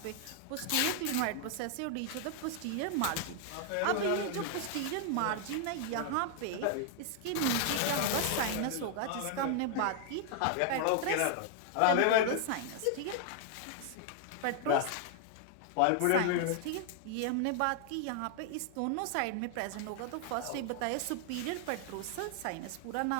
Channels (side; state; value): both; different; correlation 0.00